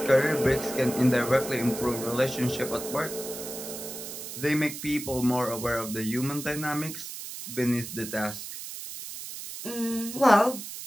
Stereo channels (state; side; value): noise; right; hiss, 9 dB below the sound